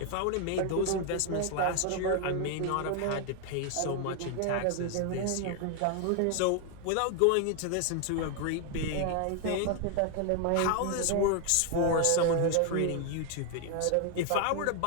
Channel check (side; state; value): both; different; correlation 0.01